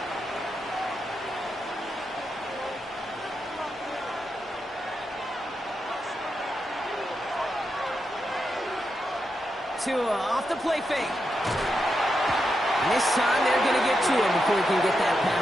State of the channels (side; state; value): both; normal; correlation 0.85